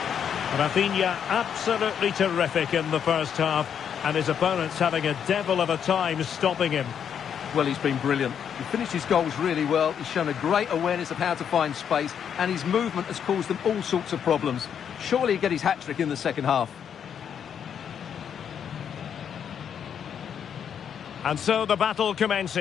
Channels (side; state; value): right; quieter; 8.2 dB